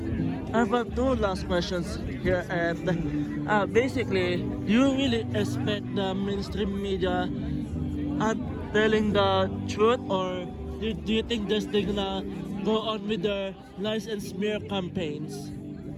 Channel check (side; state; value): both; identical; correlation 1.00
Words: I have two last questions here, and basically, do you really expect the mainstream media telling the truth, or do you think they're gonna go on with their lies and smear campaigns?